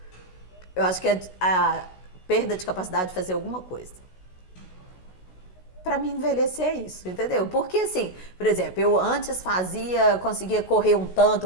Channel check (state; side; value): late; right; 16 ms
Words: Eu acho que é a perda de capacidade de fazer alguma coisa. Pra mim, envelhecer é isso, entendeu? Porque assim, por exemplo, eu antes conseguia correr um